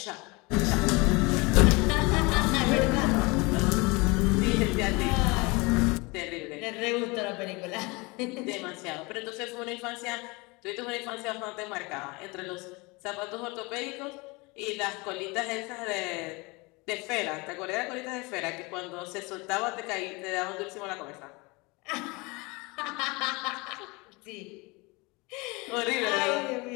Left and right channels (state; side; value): quieter; right; 26.0 dB